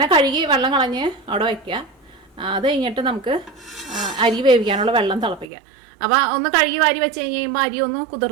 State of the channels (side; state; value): left; drops out; at 5.5 s